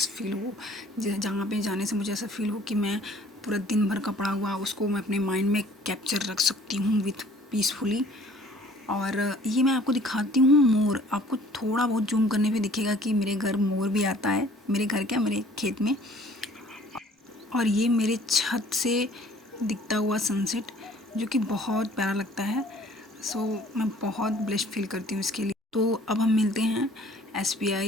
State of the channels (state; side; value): normal; both; correlation 0.54